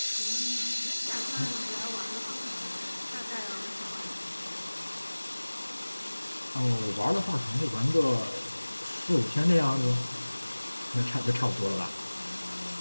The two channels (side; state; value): both; inverted; correlation -1.00